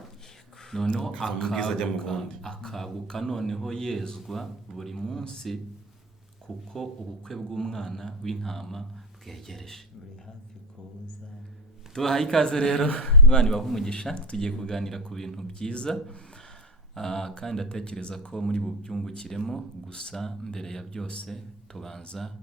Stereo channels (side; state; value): both; normal; correlation 0.22